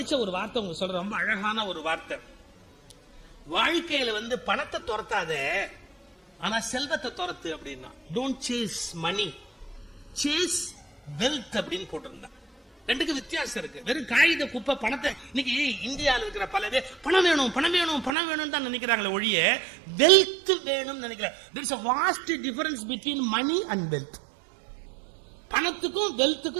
ஒரு வார்த்தை உங்களுக்கு சொல்ற, ரொம்ப அழகான ஒரு வார்த்தை. வாழ்க்கையில வந்து பணத்தை துரத்தாத, ஆனா செல்வத்தை துரத்து அப்படின்னா. Don't chase money, chase wealth அப்படின்னு போட்டிருந்தா. ரெண்டுக்கு வித்தியாசம் இருக்கு. வெறும் காகித குப்பை பணத்தை இன்னைக்கு இந்தியாவில் இருக்கிற பல பேர் பணம் வேணும் பணம் வேணும் பணம் வேணும் தான் நினைக்கிறாங்களே ஒழிய வெல்த் வேணும் நினைக்கிறாங்க. there is a vast difference between money and wealth. பணத்துக்கும்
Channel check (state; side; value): drops out; left; at 18.1 s